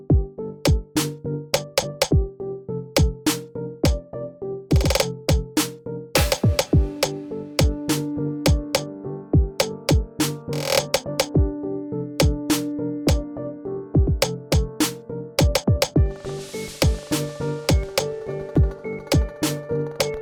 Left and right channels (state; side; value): identical; both; correlation 1.00